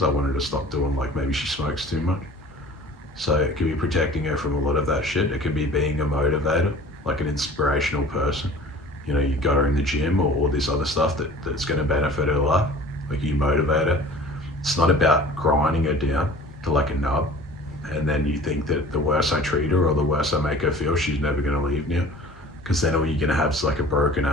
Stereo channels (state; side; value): normal; both; correlation 0.45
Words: I want her to stop doing, like maybe she smokes too much. So it can be protecting her from a lot of that shit. It can be being a motivator, like an inspirational person. You know, you got her in the gym or this other stuff that's going to benefit her life. Like you motivate her. It's not about grinding her down to like a nub. And then you think that the worse I treat her or the worse I make her feel, she's never going to leave now. Because then all you're going to have is like a broken